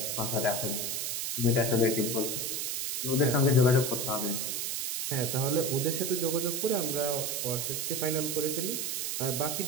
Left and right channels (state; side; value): noise; right; hiss, 1 dB below the sound